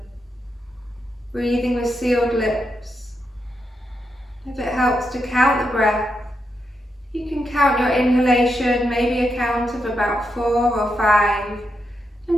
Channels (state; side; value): normal; both; correlation 0.84